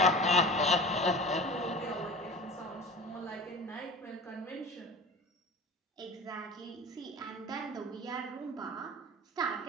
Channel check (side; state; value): both; normal; correlation 0.36